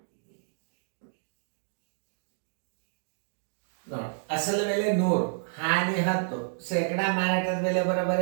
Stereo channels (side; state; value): left; silent; digital silence